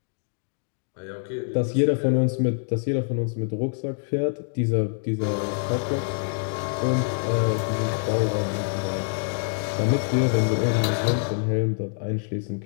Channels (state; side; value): silent; right; digital silence